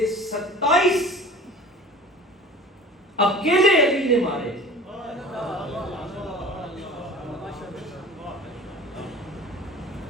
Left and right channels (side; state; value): both; normal; correlation 0.41